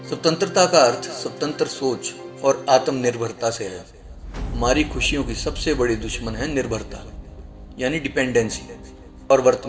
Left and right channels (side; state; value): both; identical; correlation 1.00